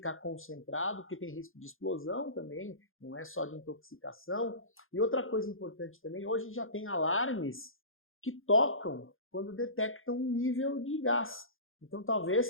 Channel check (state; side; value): late; right; 0.60 ms